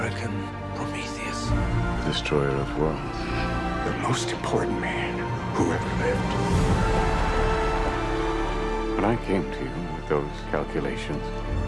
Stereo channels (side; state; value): both; identical; correlation 1.00